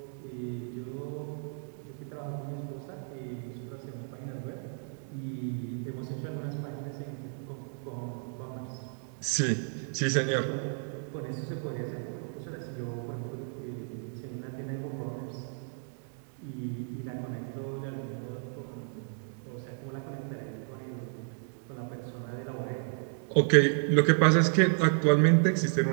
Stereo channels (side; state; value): left; silent; 56 dB below the other